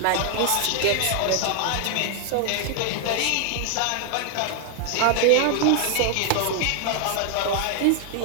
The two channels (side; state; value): both; different; correlation 0.00